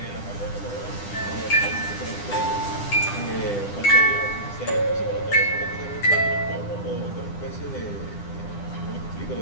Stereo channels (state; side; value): late; right; 9.9 ms